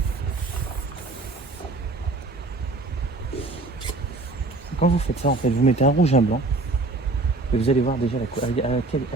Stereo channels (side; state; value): left; quieter; 3.2 dB